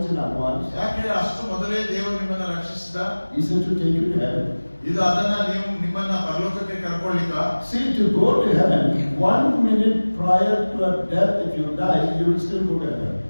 in advance? ಯಾಕೆ ಅಷ್ಟು ಮೊದಲೇ ದೇವರು ನಿಮ್ಮನ್ನ ರಕ್ಷಿಸಿದ? Is it to take you to heaven? ಇದು ಅದನ್ನ ನೀವು ನಿಮ್ಮನ್ನ ಪರಲೋಕಕ್ಕೆ ಕರ್ಕೊಳ್ಳಿಕ್ಕ? See, to go to heaven 1 minute prior to your death, if you die, you will still go to heaven.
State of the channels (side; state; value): both; inverted; correlation -1.00